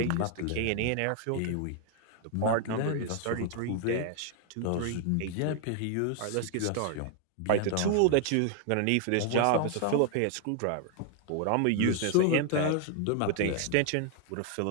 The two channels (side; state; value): both; different; correlation 0.00